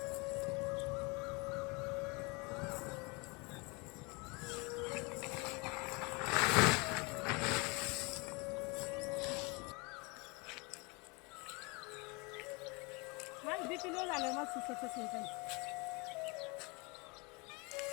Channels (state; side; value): quieter; right; 28.8 dB